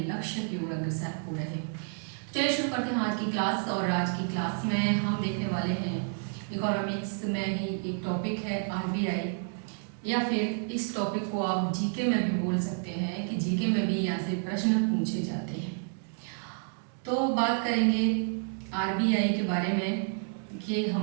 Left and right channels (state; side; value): silent; left; 58 dB below the other